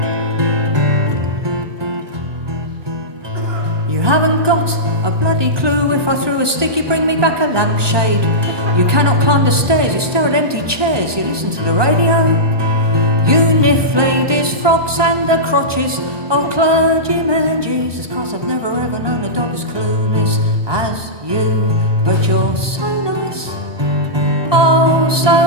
You haven't got a bloody clue. If I threw a stick, you bring me back a lampshade. You cannot climb the stairs, you stare at empty chairs, you listen to the radio. You niff ladies' frocks and the crotches of clergymen. Jesus Christ, I've never ever known a dog as clueless as you. But you're so nice, oh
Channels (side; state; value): left; late; 1.2 ms